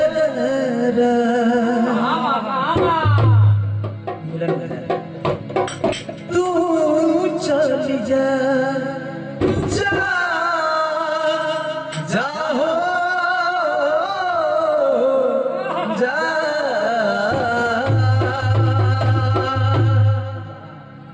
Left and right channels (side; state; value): both; identical; correlation 1.00